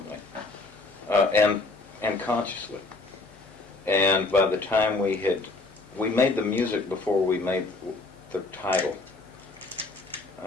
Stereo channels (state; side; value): quieter; right; 3.4 dB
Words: and consciously. And by the time we made the music before we made the title.